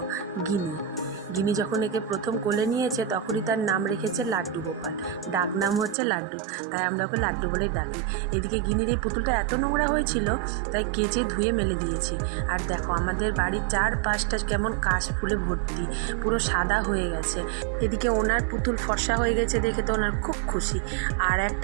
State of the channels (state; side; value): drops out; left; at 6.0 s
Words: গিনি। গিনি যখন একে প্রথম কোলে নিয়েছে তখনই তার নাম রেখেছে লাড্ডু গোপাল, ডাক নাম হচ্ছে লাড্ডু, তাই আমরা ওকে লাড্ডু বলেই ডাকি। এদিকে গিনির এই পুতুলটা এত নোংরা হয়েছিল তাই কেচে ধুয়ে মেলে দিয়েছি। আর দেখো আমাদের বাড়ির চারপাশটা কেমন কাশ ফুলে ভর্তি, পুরো সাদা হয়ে গেছে। এদিকে ওনার পুতুল ফর্সা হয়ে গেছে দেখে তো ওনার খুব খুশি, আর